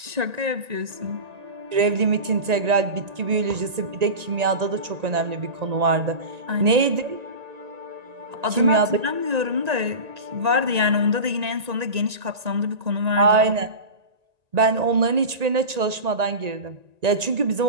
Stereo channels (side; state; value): left; late; 1.9 ms